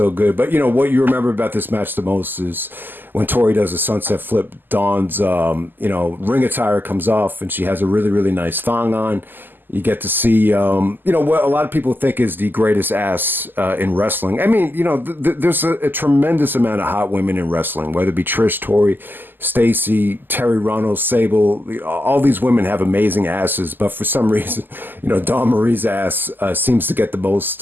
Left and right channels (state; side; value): late; left; 0.091 ms